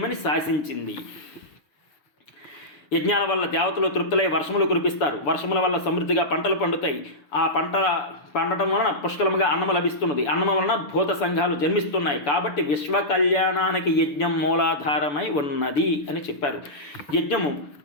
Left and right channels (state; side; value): late; right; 6.9 ms